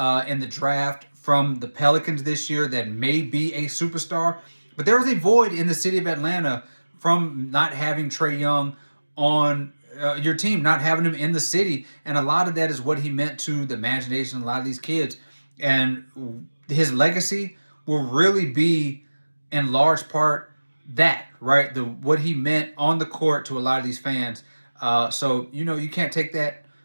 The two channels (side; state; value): both; inverted; correlation -1.00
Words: the draft from the Pelicans this year that may be a superstar. But there is a void in the city of Atlanta from not having Trae Young on your team, not having him in the city. And a lot of that is what he meant to the imagination of a lot of these kids. And his legacy will really be, in large part, that, right? What he meant on the court to a lot of these fans. So you can't take that